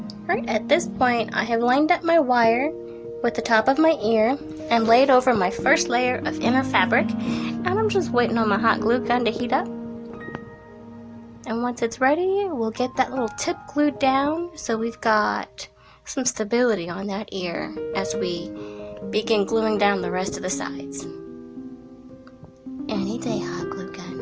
Alright, at this point I have lined up my wire with the top of my ear and laid over my first layer of inner fabric, and I'm just waiting on my hot glue gun to heat up. And once it's ready, we'll get that little tip glued down so we've got some stability on that ear as we begin gluing down the rest of the sides. Any day, hot glue gun.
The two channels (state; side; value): identical; both; correlation 1.00